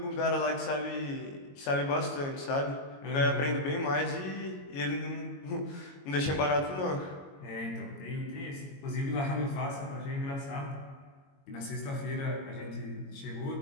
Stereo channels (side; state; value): right; late; 22 ms